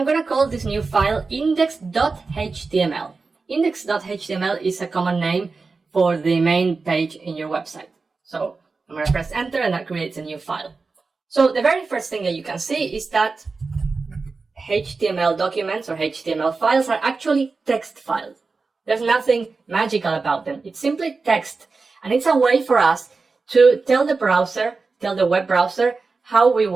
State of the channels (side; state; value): left; quieter; 4.2 dB